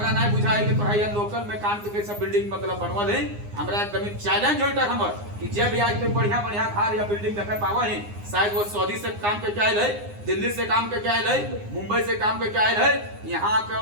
नहीं बुझा है कि पढ़ाई लोकल में काम के कैसा बिल्डिंग मतलब बनवल है। हमरा एकदम चैलेंज होता है हमर कि जब भी आज पे बढ़िया बढ़िया घर या बिल्डिंग देखा पावा है, शायद वो सऊदी से काम के क्या है, दिल्ली से काम के क्या है, मुंबई से काम के क्या है, यहाँ के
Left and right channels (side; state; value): left; late; 9.7 ms